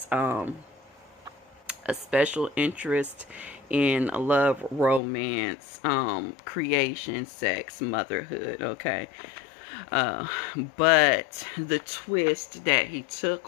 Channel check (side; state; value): right; drops out; at 5.0 s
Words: a special interest in love, romance, creation, sex, motherhood, okay? But the twist that he